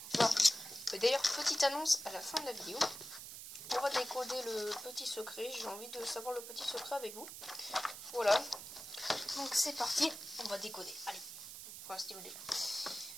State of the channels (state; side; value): noise; right; hiss, 11 dB below the sound